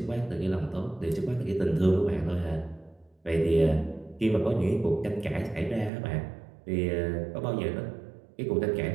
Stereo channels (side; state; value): left; drops out; at 5.9 s